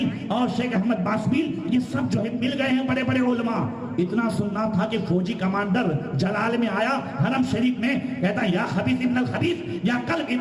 اور شیخ احمد باسبیل, یہ سب جو ہے مل گئے ہیں بڑے بڑے علماء. اتنا سننا تھا کہ فوجی کمانڈر جلال میں آیا حرم شریف میں, کہتا یا خبیث ابن الخبیث یا کلب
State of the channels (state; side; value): identical; both; correlation 1.00